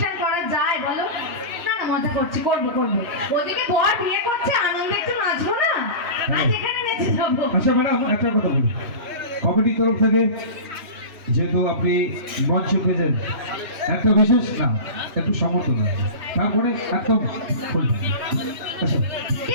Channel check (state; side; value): late; left; 2.9 ms